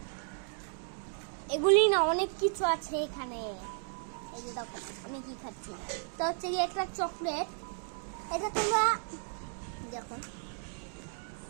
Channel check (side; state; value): left; silent; 55 dB below the other